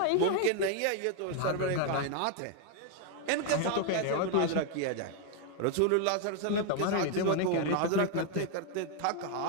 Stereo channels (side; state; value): both; different; correlation 0.00